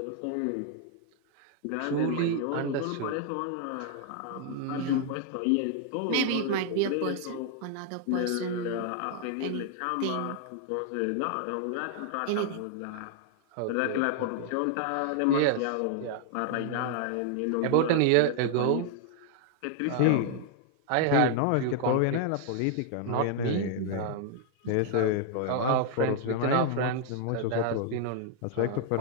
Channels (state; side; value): different; both; correlation 0.00